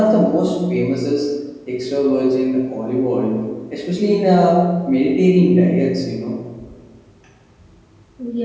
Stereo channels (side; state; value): both; identical; correlation 1.00